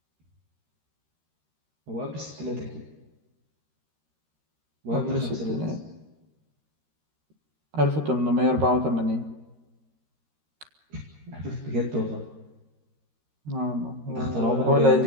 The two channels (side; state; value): left; late; 13 ms